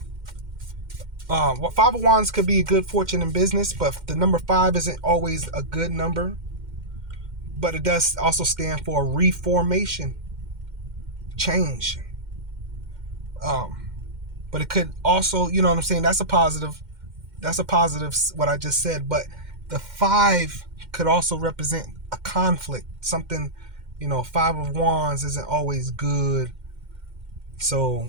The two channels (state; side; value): late; left; 2.1 ms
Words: Five of Wands could be a good fortune in business, but the number 5 isn't always a good number. But it does also stand for reformation, change. But it could also, you know what I'm saying? That's a positive. What I just said. But the 5 could also represent a conflict, something. 5 of Wands isn't always good. So